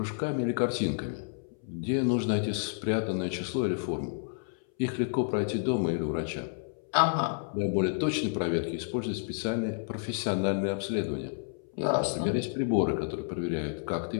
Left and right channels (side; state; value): right; silent; 58 dB below the other